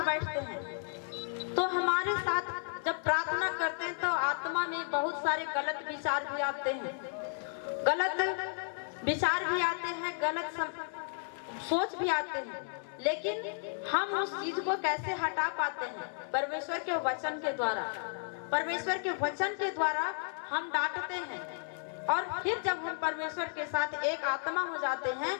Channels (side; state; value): right; silent; digital silence